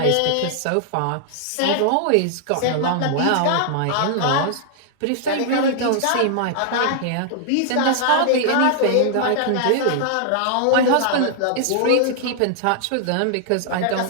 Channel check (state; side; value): different; both; correlation -0.01